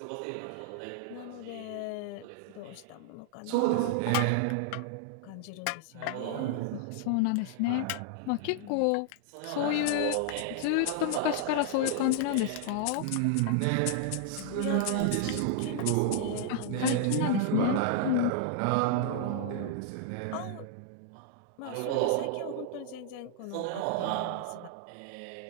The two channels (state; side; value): different; both; correlation -0.01